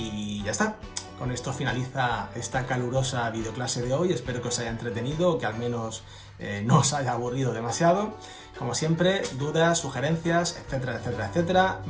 ya está. Con esto finaliza esta calurosa videoclase de hoy. Espero que os haya entretenido, que al menos no os haya aburrido demasiado. Como siempre, dudas, sugerencias, etcétera, etcétera, etcétera,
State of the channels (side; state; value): both; identical; correlation 1.00